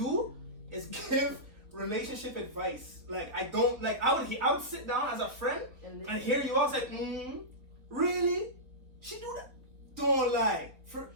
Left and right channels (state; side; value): late; left; 3.6 ms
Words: is give relationship advice. Like, I don't, like, I would sit down as a friend and hear you all say, really? She do that? Don't lie.